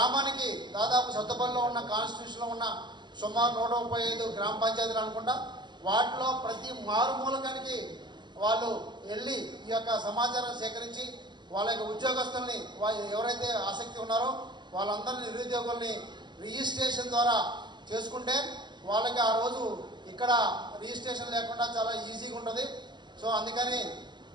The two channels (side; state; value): left; late; 0.21 ms